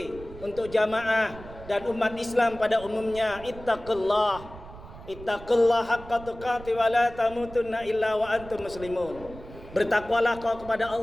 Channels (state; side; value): noise; right; rumble, 16 dB below the sound